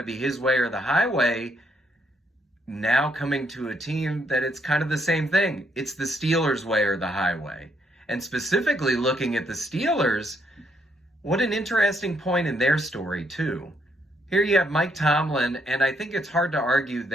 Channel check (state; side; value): normal; both; correlation 0.73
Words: be his way or the highway, now coming to a team that it's kind of the same thing. It's the Steelers' way or the highway. And specifically looking at the Steelers, what an interesting point in their story, too. Here you have Mike Tomlin, and I think it's hard to argue